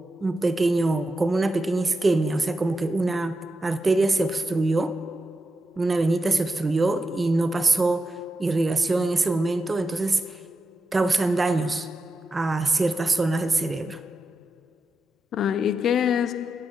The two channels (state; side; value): normal; both; correlation 0.88